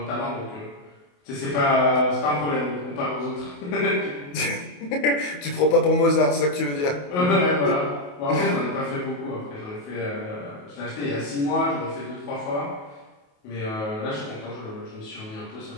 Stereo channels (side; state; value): right; late; 28 ms